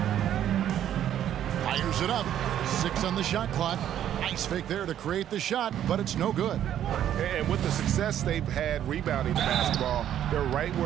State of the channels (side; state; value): left; quieter; 10.8 dB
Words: Fires it up. 6 on the shot clock. Nice fake there to create the shot, but it's no good. And with the success they've had rebounding the basketball, they're right